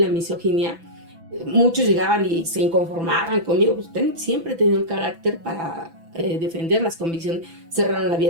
misoginia, muchos llegaban y se inconformaban conmigo, pues siempre he tenido el carácter para defender las convicciones. Cerraron la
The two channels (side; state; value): left; late; 6.0 ms